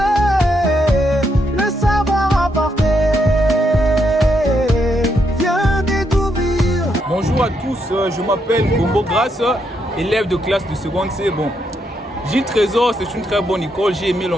le savoir apporter. Viens découvrir. Bonjour à tous, je m'appelle Gombo Grasse, élève de classe de seconde C. Bon, Gilles Trésor, c'est une très bonne école, j'ai aimé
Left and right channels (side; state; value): both; normal; correlation 0.78